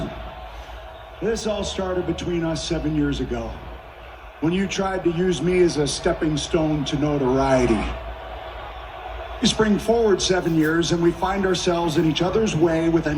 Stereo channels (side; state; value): both; identical; correlation 1.00